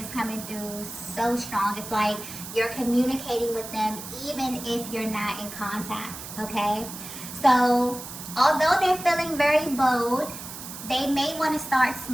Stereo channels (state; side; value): noise; right; hiss, 11 dB below the sound